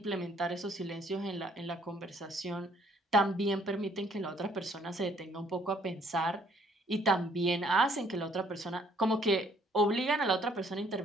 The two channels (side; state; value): both; normal; correlation 0.63